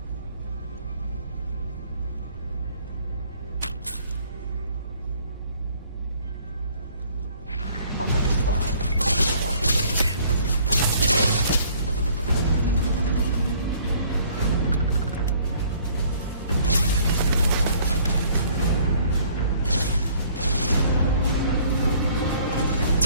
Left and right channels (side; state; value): both; inverted; correlation -0.58